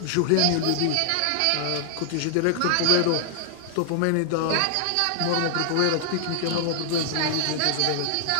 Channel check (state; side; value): different; both; correlation 0.00